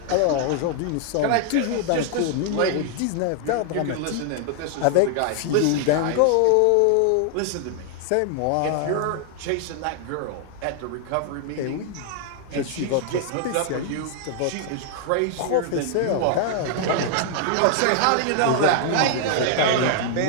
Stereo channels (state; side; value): different; both; correlation 0.00